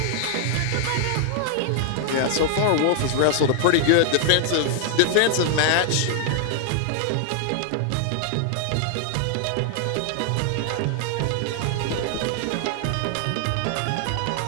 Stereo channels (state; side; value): different; both; correlation 0.00